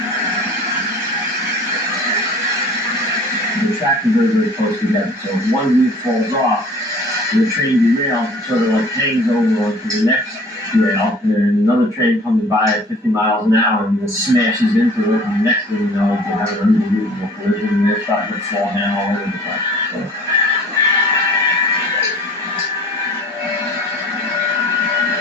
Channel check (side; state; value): both; normal; correlation 0.48